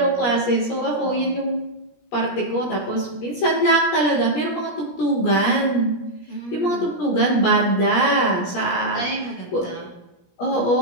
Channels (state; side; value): late; right; 17 ms